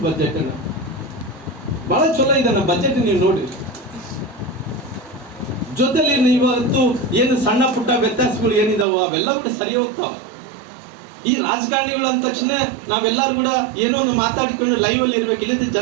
ಬಜೆಟ್ ಅಣ್ಣ, ಬಹಳ ಚಲೋ ಇದೆ ಅಣ್ಣ ಬಜೆಟ್. ನೀವು ನೋಡಿ, ಜೊತೆಲಿ ಇವತ್ತು ಏನು ಸಣ್ಣ ಪುಟ್ಟ ವ್ಯತ್ಯಾಸಗಳು ಏನಿದಾವೋ ಅವೆಲ್ಲ ಕೂಡ ಸರಿ ಹೋಗ್ತಾವ. ಈ ರಾಜಕಾರಣಿಗಳು ಅಂದ ತಕ್ಷಣ ನಾವೆಲ್ಲರೂ ಕೂಡ ಏನೋ ಒಂದು ಮಾತಾಡಿಕೊಂಡು ಲೈವ್ ಅಲ್ಲಿ ಇರ್ಬೇಕು, ಇಲ್ಲದ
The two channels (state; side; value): drops out; left; at 8.8 s